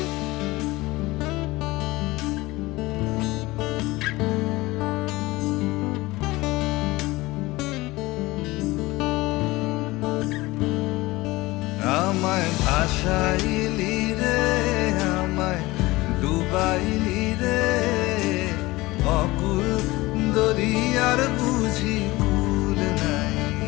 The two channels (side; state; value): right; quieter; 20.4 dB